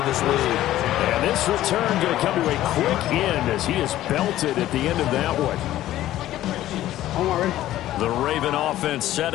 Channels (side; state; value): right; quieter; 14.0 dB